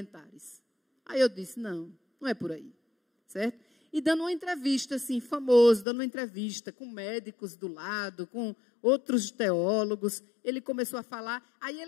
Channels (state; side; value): drops out; right; at 5.9 s